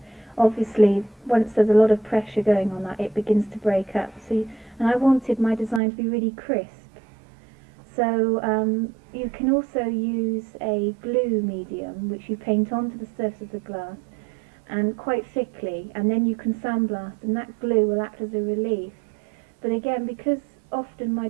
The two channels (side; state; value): left; drops out; at 5.8 s